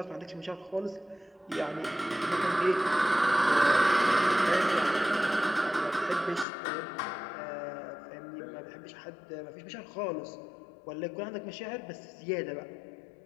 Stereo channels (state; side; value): drops out; right; at 6.5 s